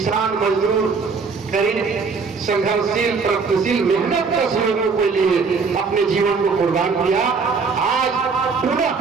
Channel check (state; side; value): quieter; left; 4.9 dB